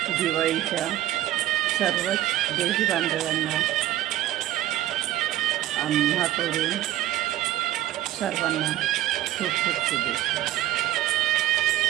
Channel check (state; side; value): quieter; left; 13.8 dB